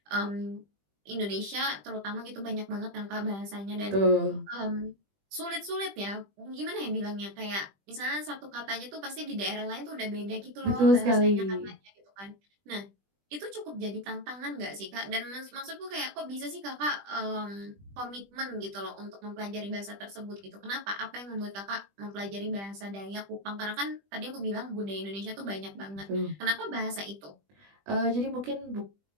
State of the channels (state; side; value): late; left; 20 ms